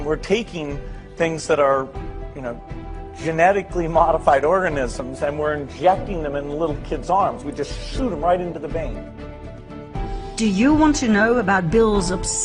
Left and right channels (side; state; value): both; identical; correlation 1.00